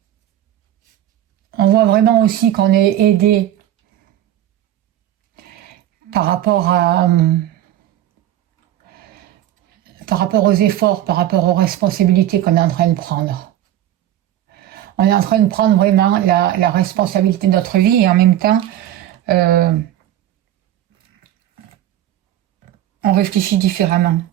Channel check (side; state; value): left; quieter; 12.3 dB